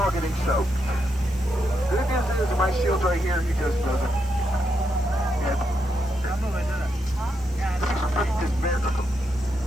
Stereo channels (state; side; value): normal; both; correlation 0.82